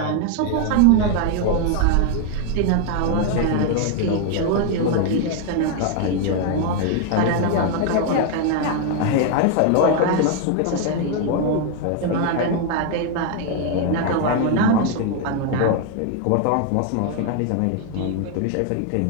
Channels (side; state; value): both; different; correlation 0.01